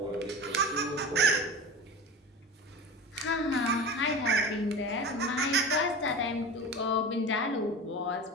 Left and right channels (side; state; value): both; normal; correlation 0.31